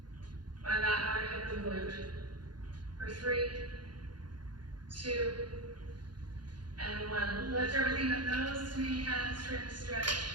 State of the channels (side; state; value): left; late; 0.71 ms